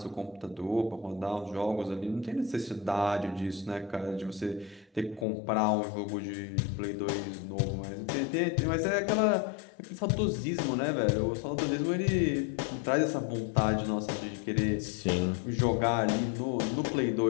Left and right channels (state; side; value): drops out; right; at 5.2 s